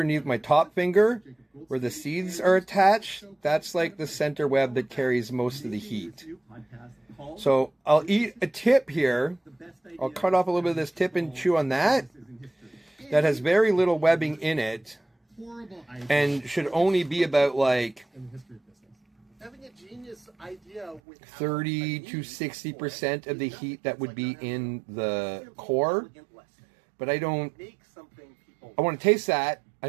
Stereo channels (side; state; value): left; drops out; at 21.0 s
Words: my top finger, where the seeds are attached, that's like the center web that carries most of the heat. So I'll eat a tip here. I'll cut off a little bit of this tip and chew on that. That has very little webbing in it and should only be about like 30 to 60% of the heat that would be in the core. But I want to taste that.